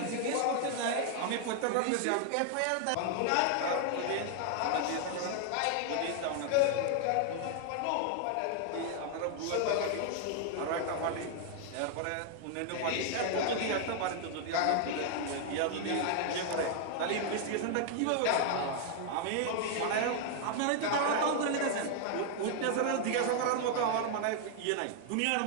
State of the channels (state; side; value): different; both; correlation 0.00